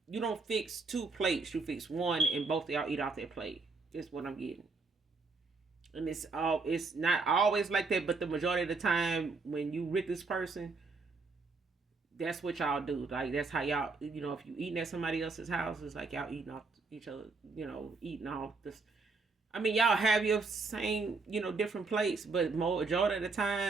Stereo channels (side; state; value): left; quieter; 4.1 dB